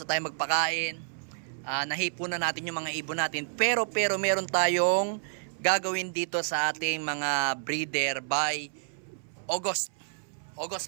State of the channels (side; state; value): left; silent; 58 dB below the other